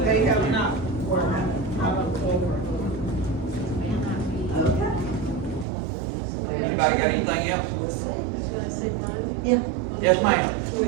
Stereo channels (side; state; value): left; drops out; at 5.7 s